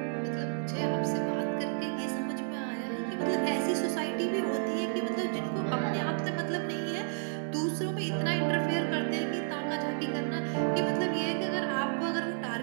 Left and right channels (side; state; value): left; silent; 57 dB below the other